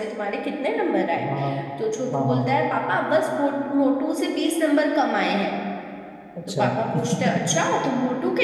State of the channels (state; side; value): identical; both; correlation 1.00